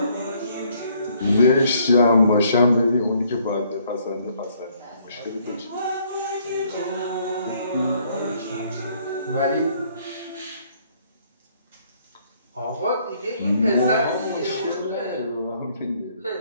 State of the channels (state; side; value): inverted; both; correlation -0.65